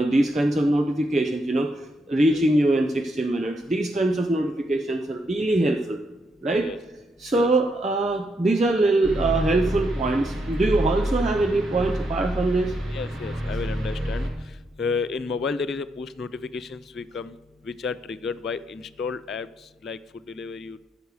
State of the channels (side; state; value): both; normal; correlation 0.79